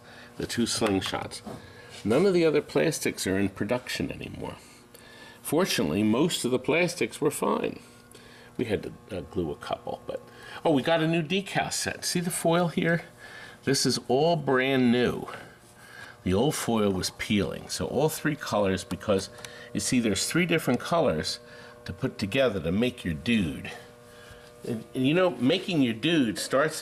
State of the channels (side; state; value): both; identical; correlation 1.00